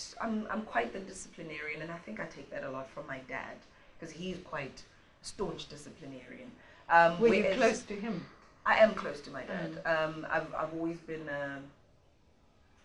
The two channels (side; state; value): both; identical; correlation 1.00